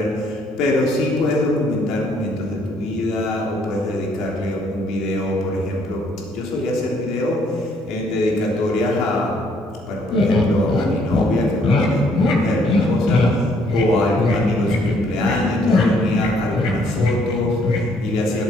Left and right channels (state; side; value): normal; both; correlation 0.66